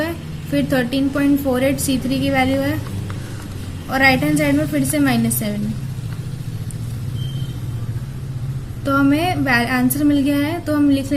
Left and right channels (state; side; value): identical; both; correlation 1.00